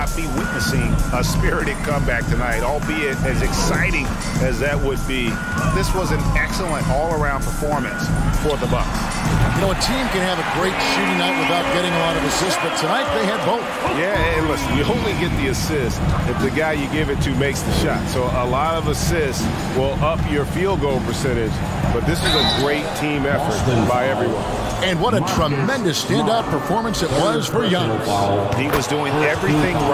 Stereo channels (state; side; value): identical; both; correlation 1.00